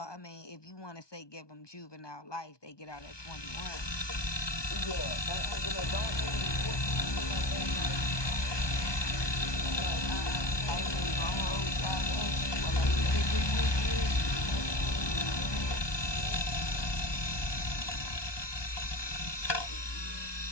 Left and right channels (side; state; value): right; late; 1.2 ms